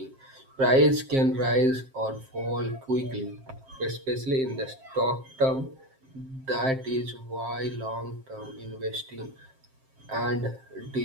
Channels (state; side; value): late; left; 7.5 ms